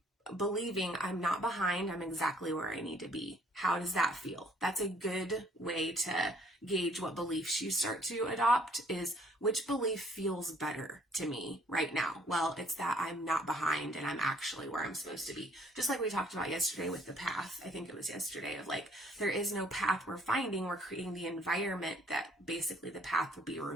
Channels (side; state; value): both; normal; correlation 0.61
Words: believing I'm not behind, I'm exactly where I need to be. How does that feel? That's a good way to gauge what beliefs you start to adopt, is which belief feels better to me right now? Well, it's that I'm not behind and I'm actually where I'm supposed to be. Just like we talked about yesterday with the path. I think it was yesterday, of like, there is no path we're finding. We're creating the environment that basically the path will be